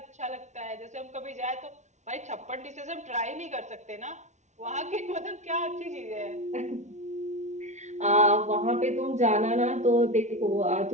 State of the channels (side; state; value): left; late; 0.34 ms